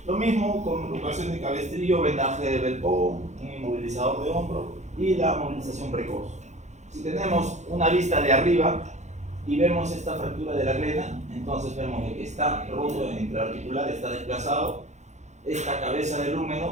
Lo mismo con luxación de cabestrillo, vendaje de Velpo, un inmovilizador de hombro y la movilización precoz. Si tenemos una vista de arriba y vemos esta fractura de la glena, entonces vemos que está roto intraarticular, está desplazado, esta cabeza del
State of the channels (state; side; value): late; left; 0.33 ms